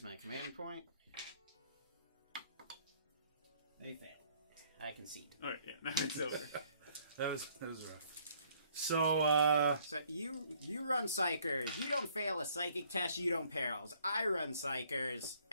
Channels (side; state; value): both; inverted; correlation -0.63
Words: my command point. They fail. I concede. Alright, yeah, now it's over. That was rough. So, So you run Psychers. You don't fail a psychic test. You don't perils. I run Psychers.